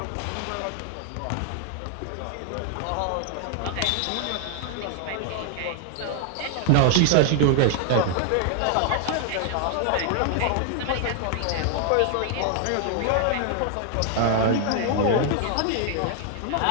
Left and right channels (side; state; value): both; different; correlation 0.00